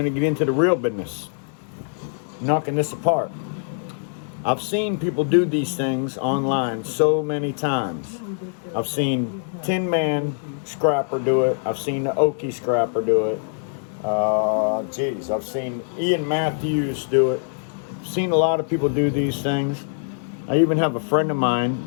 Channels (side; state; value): right; silent; 63 dB below the other